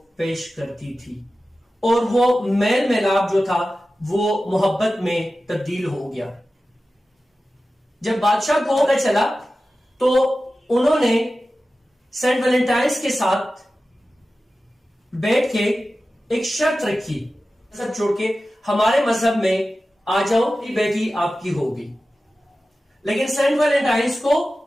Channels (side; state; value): both; normal; correlation 0.94